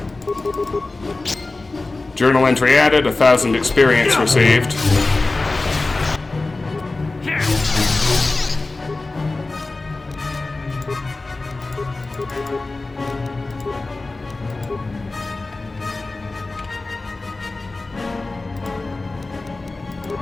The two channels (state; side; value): quieter; right; 3.3 dB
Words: Journal entry added, 1,000 experience received.